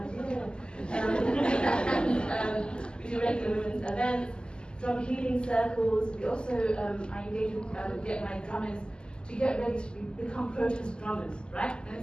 And we do regular women's events, drum healing circles. We also, I engage with, get my drummers to get ready to become protest drummers, right? And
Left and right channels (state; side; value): late; right; 0.048 ms